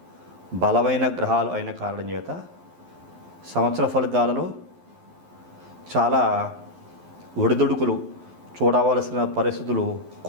బలమైన గ్రహాలు అయిన కారణం చేత సంవత్సర ఫలితాలలో చాలా ఒడిదుడుకులు చూడవలసిన పరిస్థితులు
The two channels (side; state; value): left; late; 11 ms